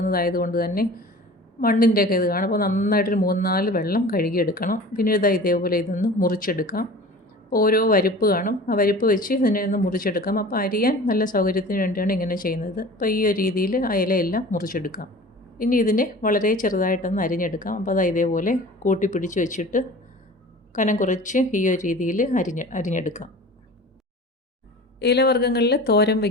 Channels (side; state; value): both; normal; correlation 0.40